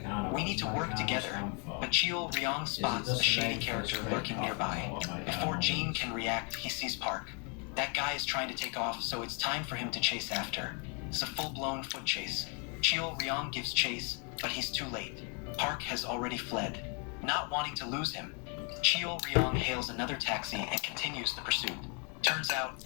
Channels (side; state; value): right; quieter; 36.4 dB